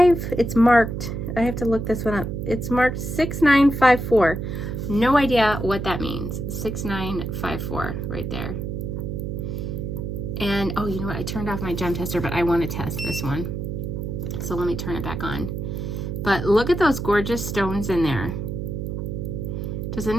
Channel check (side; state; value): right; noise; hum, 4 dB below the sound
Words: it's marked, I have to look this one up. It's marked 6954. No idea what that means. 6954 right there. And oh, you know what? I turned off my gem tester, but I want to test this one. So let me turn it back on. But look at those gorgeous stones in there. Does